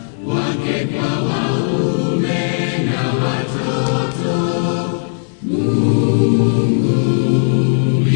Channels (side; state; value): right; silent; digital silence